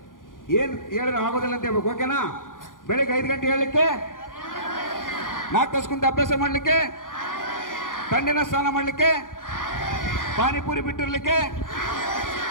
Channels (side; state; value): right; late; 0.89 ms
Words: ಏನು ಹೇಳಿದ್ರೆ ಆಗೋದಿಲ್ಲ ಅಂತ ಹೇಳ್ಬೇಕು, ಓಕೆನಾ? ಬೆಳಿಗ್ಗೆ 5 ಗಂಟೆ ಹೇಳಲಿಕ್ಕೆ, 4 ತಾಸು ಕುಂತ ಅಭ್ಯಾಸ ಮಾಡಲಿಕ್ಕೆ, ತಣ್ಣೀರಿನ ಸ್ನಾನ ಮಾಡಲಿಕ್ಕೆ, ಪಾನಿಪುರಿ ಬಿಟ್ಟಿರ್ಲಿಕ್ಕೆ,